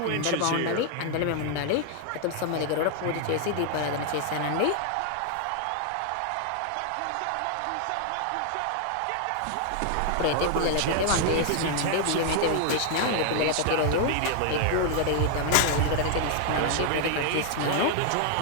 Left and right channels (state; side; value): different; both; correlation 0.00